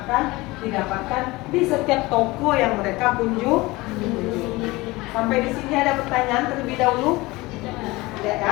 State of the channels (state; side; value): quieter; right; 21.3 dB